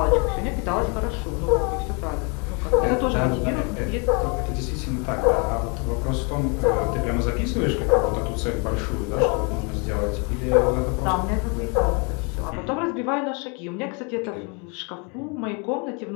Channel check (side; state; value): right; quieter; 33.6 dB